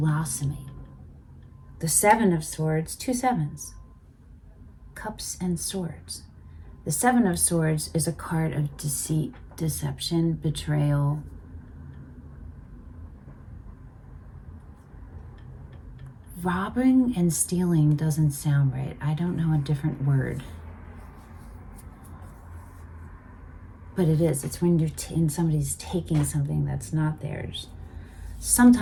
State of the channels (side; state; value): both; identical; correlation 1.00